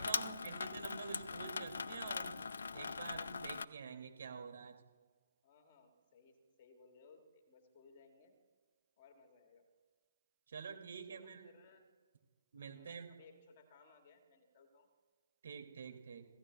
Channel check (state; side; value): inverted; both; correlation -0.83